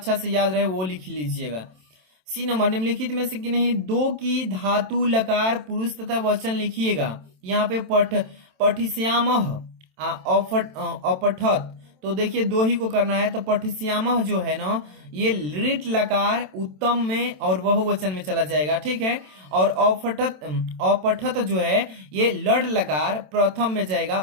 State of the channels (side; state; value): left; late; 27 ms